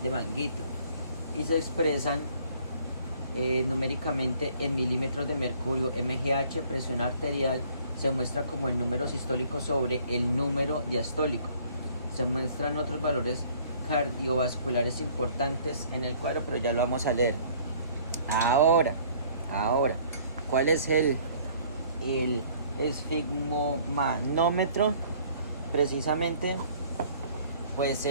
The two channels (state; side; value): inverted; both; correlation -0.57